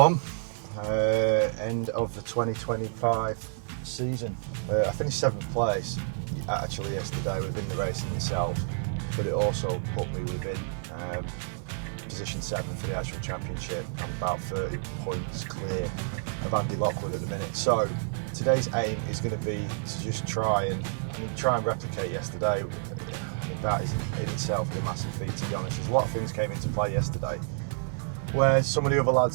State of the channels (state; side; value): silent; left; 58 dB below the other